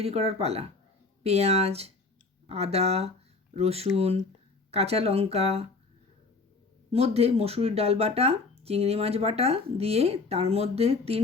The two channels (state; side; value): quieter; right; 3.8 dB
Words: করার পালা। পেঁয়াজ, আদা, রসুন, কাঁচা লঙ্কা মধ্যে মসুরির ডাল বাটা, চিংড়ি মাছ বাটা দিয়ে তার মধ্যে 3